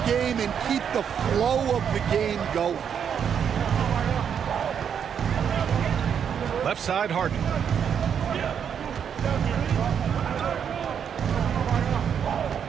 game and keep the flow of the game going. Left side, Harden.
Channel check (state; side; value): quieter; left; 7.9 dB